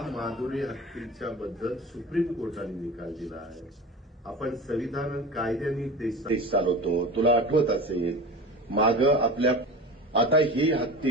माधुरी हत्तीच्या बद्दल सुप्रीम कोर्टाने निकाल दिला आहे. आपण संविधान आणि कायद्याने देश चालवतो. तुला आठवत असेल माग आपल्या आता ही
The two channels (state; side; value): normal; both; correlation 0.33